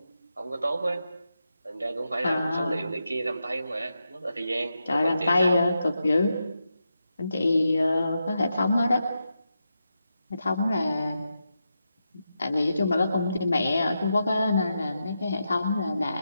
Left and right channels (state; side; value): inverted; both; correlation -0.87